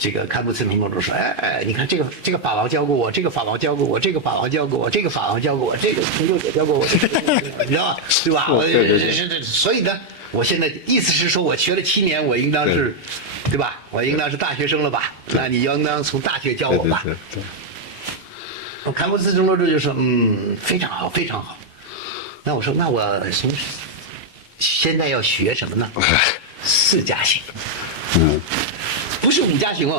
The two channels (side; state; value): both; normal; correlation 0.00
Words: 这个堪布茨城罗柱说：“你看这个法王教过我，这个法王教过我，这个法王教过我，这个法王教过我，这个成就也教过我，你知道吧？对吧？所以呢，我现在意思是说，我学了7年，我应当是，对吧？我应当是大学生了吧？那你应当从大学教我吧？”堪布茨城罗柱就说：“非常好，非常好。”那我说：“那我现在要学什么呢？4加行。”不是5加行